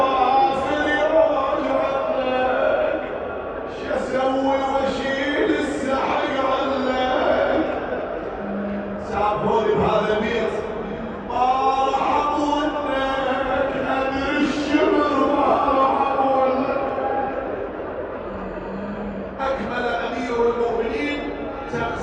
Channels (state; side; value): identical; both; correlation 1.00